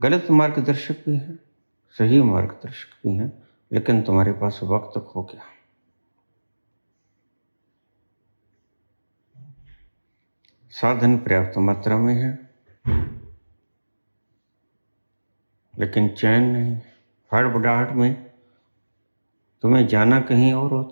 मार्गदर्शक भी हैं, सही मार्गदर्शक भी हैं, लेकिन तुम्हारे पास वक्त खो गया। साधन पर्याप्त मात्रा में है, लेकिन चैन नहीं। हड़बड़ाहट में तुम्हें जाना कहीं और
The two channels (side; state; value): both; inverted; correlation -1.00